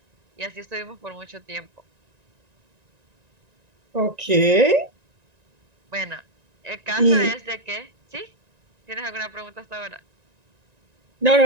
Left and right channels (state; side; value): late; left; 1.9 ms